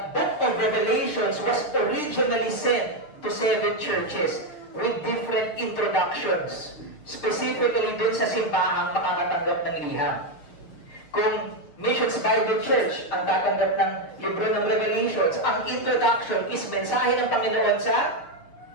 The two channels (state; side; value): late; right; 6.5 ms